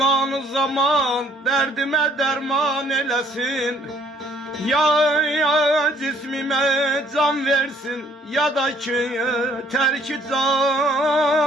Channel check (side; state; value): both; normal; correlation 0.61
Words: zaman derdime derman eləsin. Ya cismime can versin ya da ki terki